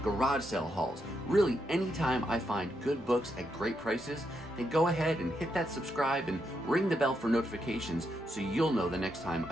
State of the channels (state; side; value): normal; both; correlation 0.81